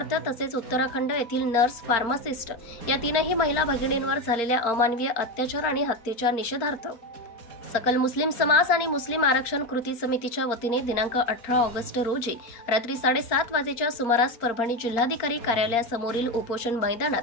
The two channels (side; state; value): right; late; 4.3 ms